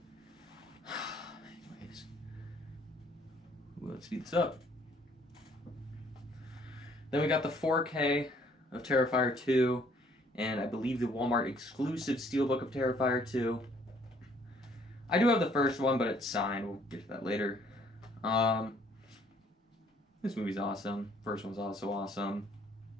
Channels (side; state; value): both; normal; correlation 0.62